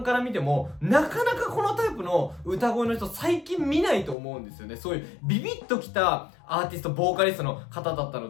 から見ても、なかなかこのタイプの歌声の人最近見ないと思うんですよね。そういうビビッときたアーティスト、ボーカリストの方だった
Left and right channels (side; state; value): right; drops out; at 4.2 s